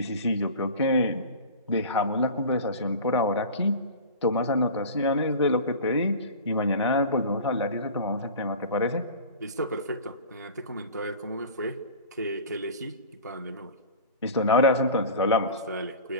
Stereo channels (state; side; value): inverted; both; correlation -0.36